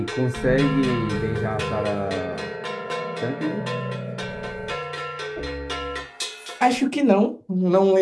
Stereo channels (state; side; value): identical; both; correlation 1.00